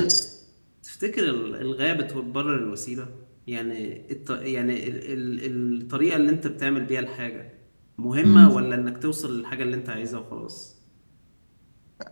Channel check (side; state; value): both; inverted; correlation -1.00